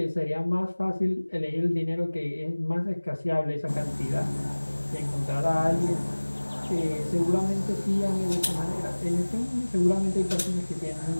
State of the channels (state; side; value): inverted; both; correlation -1.00